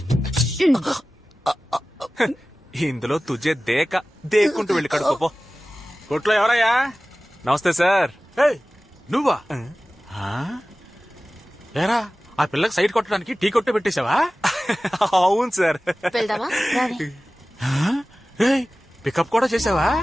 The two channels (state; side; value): normal; both; correlation 0.97